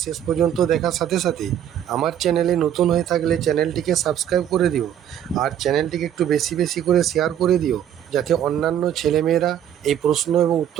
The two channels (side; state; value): left; quieter; 10.2 dB